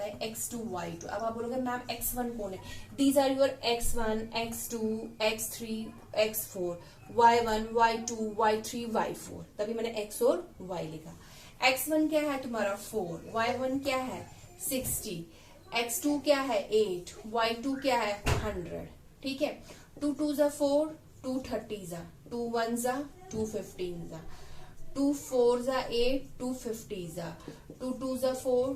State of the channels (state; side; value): identical; both; correlation 1.00